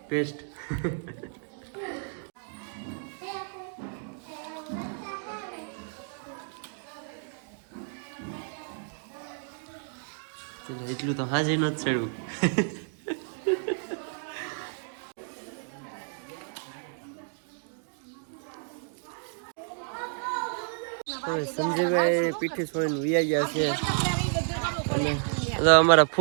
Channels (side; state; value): left; silent; 57 dB below the other